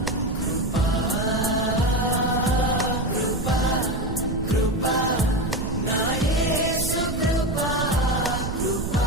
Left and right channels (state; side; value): noise; right; rumble, 4 dB below the sound